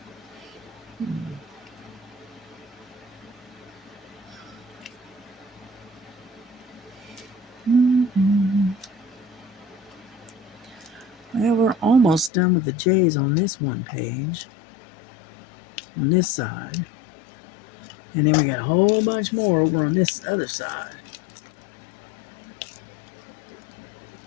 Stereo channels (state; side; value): drops out; right; at 12.3 s